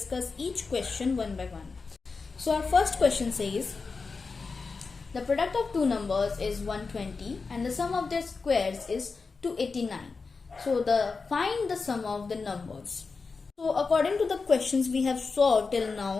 each question one by one. So our first question says, the product of two numbers is 120 and the sum of their squares is 289. So find the sum of the numbers. So according to the questions we have solved till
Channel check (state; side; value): quieter; right; 4.5 dB